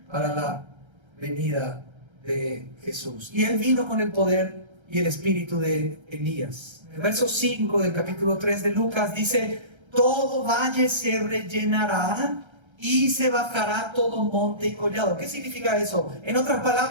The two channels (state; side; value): late; left; 1.3 ms